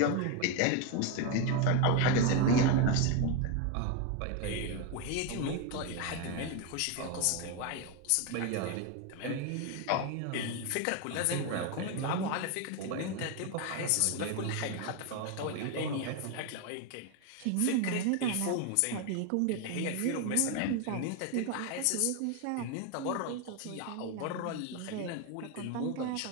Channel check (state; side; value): different; both; correlation 0.02